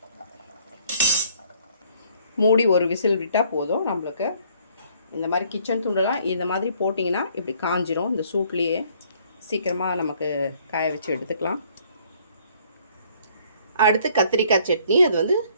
மூடி ஒரு விசில் விட்டால் போதும். நம்மளுக்கு இந்த மாதிரி கிச்சன் துண்டெல்லாம் இந்த மாதிரி போட்டிங்கன்னா இப்படி காஞ்சிரும். இந்த சூட்லேயே சீக்கிரமாக நமக்கு காய வச்சு எடுத்துக்கலாம். அடுத்து கத்திரிக்காய் சட்னி. அது வந்து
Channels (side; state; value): both; inverted; correlation -0.62